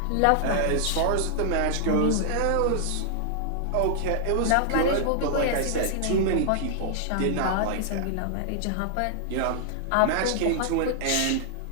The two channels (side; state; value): both; different; correlation -0.01